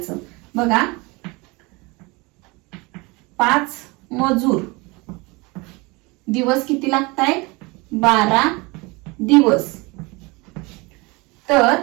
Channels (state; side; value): quieter; left; 25.7 dB